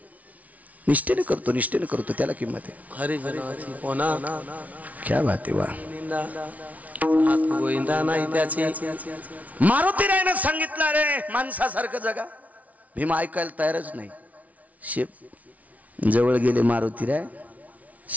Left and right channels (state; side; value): late; left; 0.070 ms